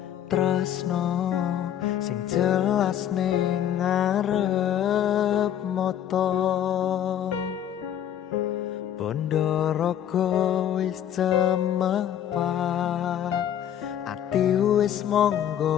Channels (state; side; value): quieter; right; 10.3 dB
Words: tresno sing jelas ning ngarep mata bondo raga wis cemepak ati wis